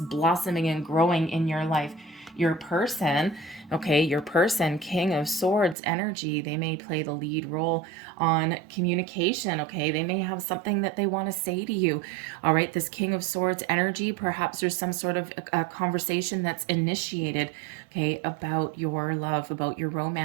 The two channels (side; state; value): left; drops out; at 5.8 s